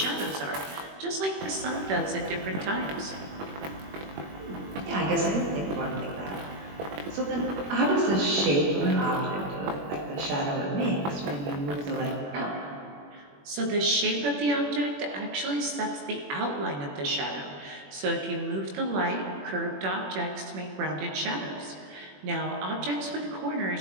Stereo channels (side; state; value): left; late; 21 ms